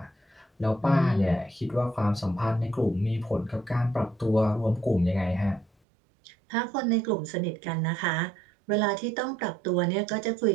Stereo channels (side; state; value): left; drops out; at 5.7 s